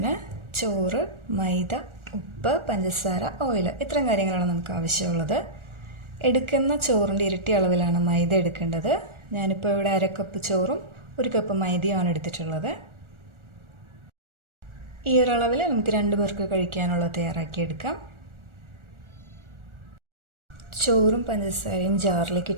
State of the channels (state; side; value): late; left; 1.4 ms